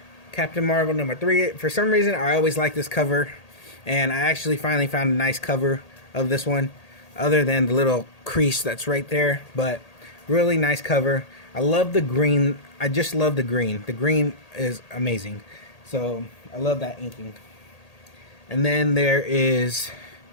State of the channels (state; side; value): late; right; 1.8 ms